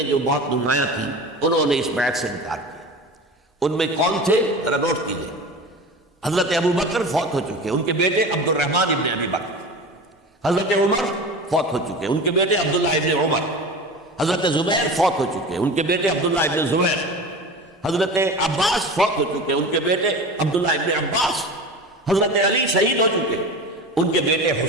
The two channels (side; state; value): both; normal; correlation 0.32